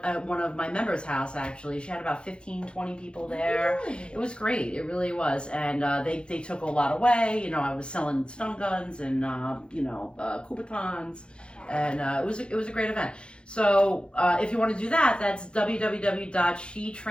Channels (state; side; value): late; right; 0.055 ms